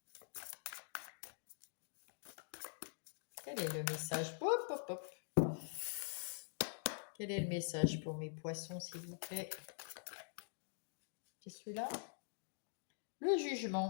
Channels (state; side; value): silent; right; digital silence